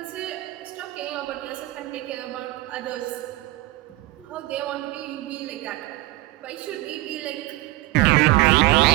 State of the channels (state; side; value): quieter; left; 19.6 dB